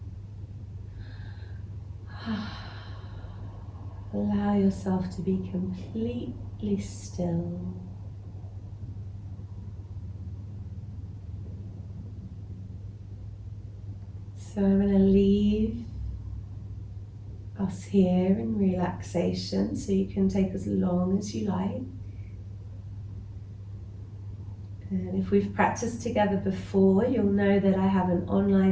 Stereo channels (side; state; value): both; identical; correlation 1.00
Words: Allow yourself to be completely still. So I'm going to leave us here in relaxation, so you can take as long as you like. And if we've practiced together before, you'll know that I have an